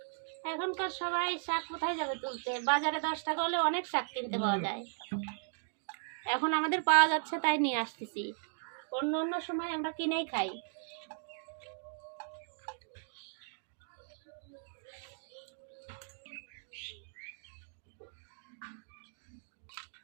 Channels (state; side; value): silent; left; digital silence